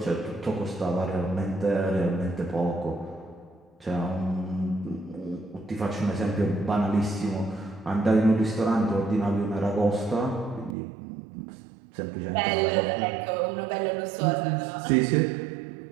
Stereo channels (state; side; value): drops out; left; at 10.8 s